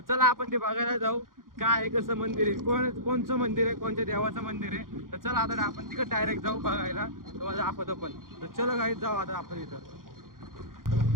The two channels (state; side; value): late; left; 0.91 ms